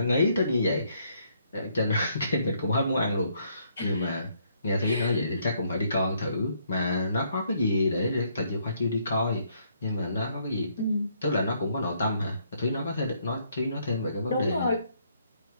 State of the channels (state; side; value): inverted; both; correlation -0.70